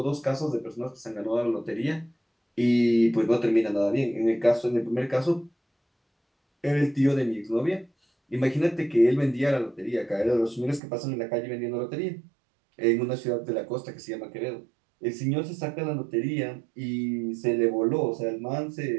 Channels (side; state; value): left; drops out; at 10.8 s